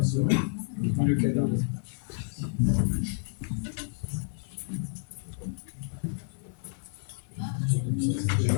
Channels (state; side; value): silent; right; digital silence